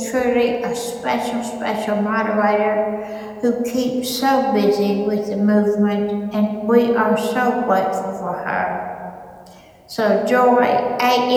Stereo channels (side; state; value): both; identical; correlation 1.00